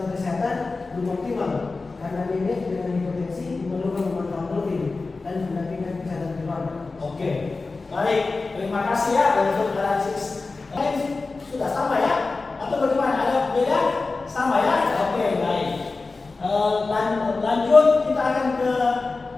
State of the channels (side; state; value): right; quieter; 3.8 dB